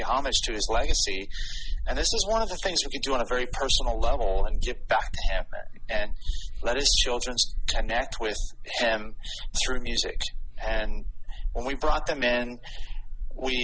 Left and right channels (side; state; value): both; identical; correlation 1.00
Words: homage to his legacy. And this is one of the things we could do on a very personal level and give back to him and let his children connect with him through music. And when we brought them in, what